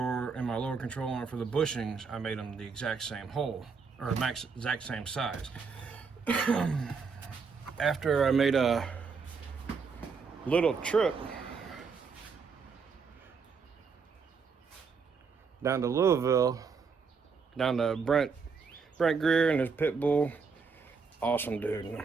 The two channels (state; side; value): quieter; left; 5.3 dB